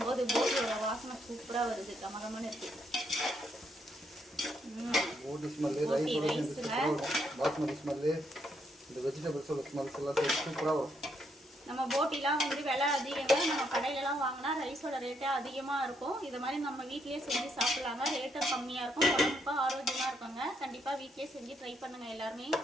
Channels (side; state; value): both; normal; correlation 0.75